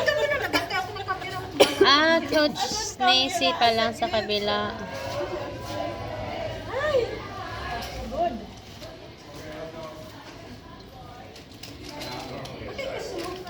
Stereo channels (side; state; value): both; identical; correlation 1.00